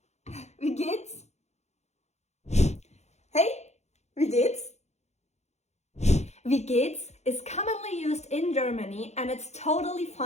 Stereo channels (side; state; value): right; late; 0.32 ms